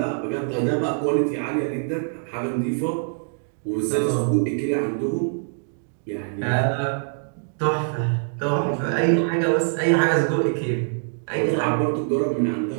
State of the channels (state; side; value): silent; left; digital silence